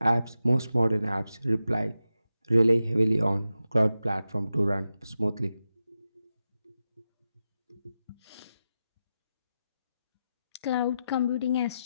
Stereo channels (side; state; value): both; inverted; correlation -0.90